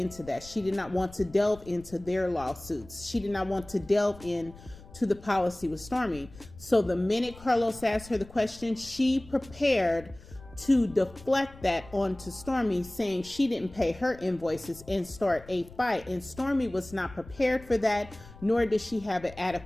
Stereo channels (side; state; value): left; noise; rumble, 19 dB below the sound